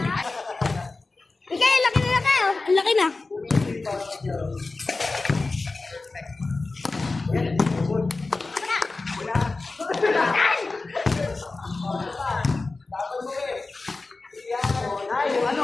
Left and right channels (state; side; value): quieter; right; 3.6 dB